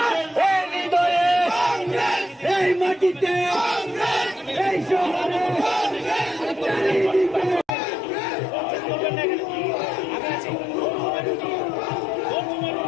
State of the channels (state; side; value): drops out; right; at 7.7 s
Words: এই হৃদয়ে এই মাটিতে এই শহরে